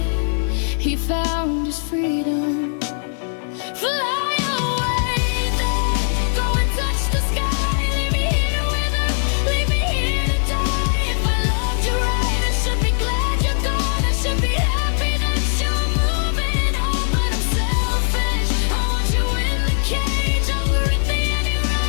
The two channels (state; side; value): silent; right; digital silence